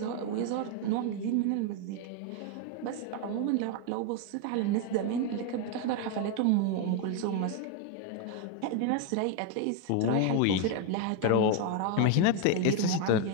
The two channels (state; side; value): different; both; correlation 0.01